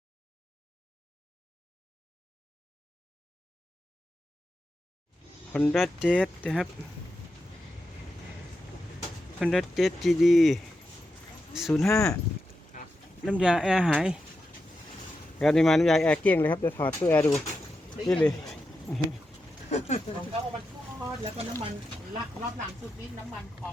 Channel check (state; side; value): normal; both; correlation 0.88